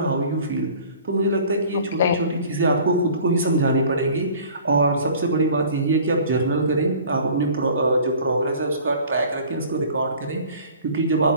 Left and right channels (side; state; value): both; inverted; correlation -0.48